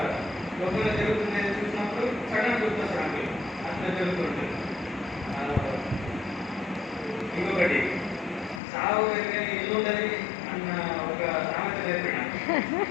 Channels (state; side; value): drops out; right; at 8.6 s